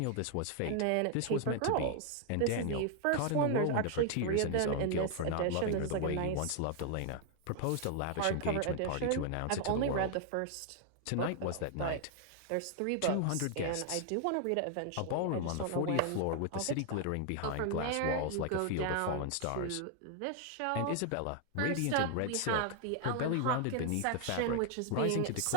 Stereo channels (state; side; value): different; both; correlation 0.00